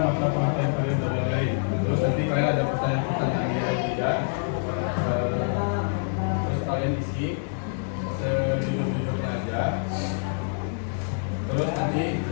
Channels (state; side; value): silent; right; digital silence